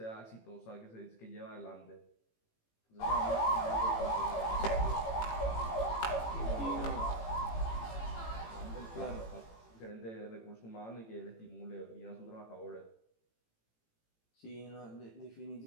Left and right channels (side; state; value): right; late; 18 ms